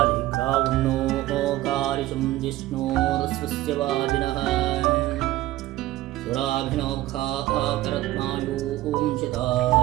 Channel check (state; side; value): quieter; left; 16.2 dB